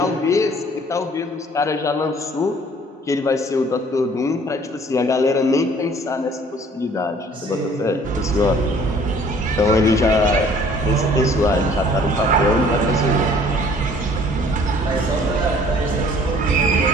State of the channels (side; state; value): both; normal; correlation 0.55